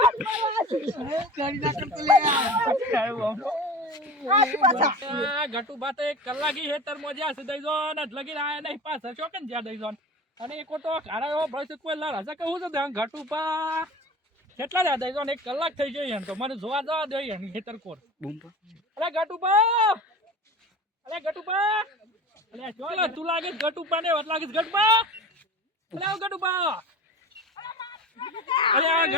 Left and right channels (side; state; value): both; normal; correlation 0.35